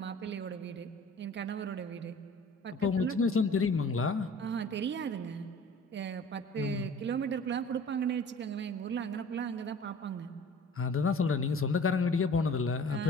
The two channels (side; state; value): both; normal; correlation 0.46